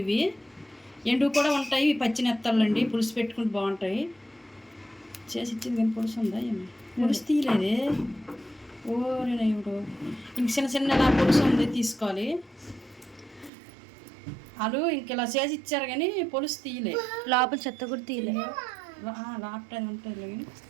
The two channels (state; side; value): drops out; left; at 13.5 s